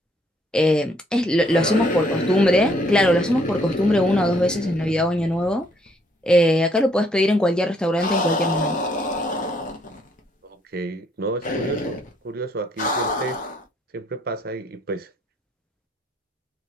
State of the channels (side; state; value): both; normal; correlation 0.68